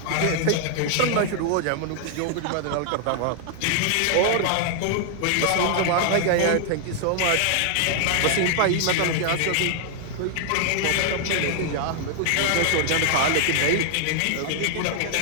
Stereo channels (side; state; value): both; different; correlation 0.00